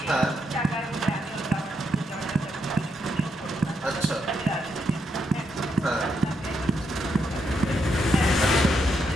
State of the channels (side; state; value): both; normal; correlation 0.79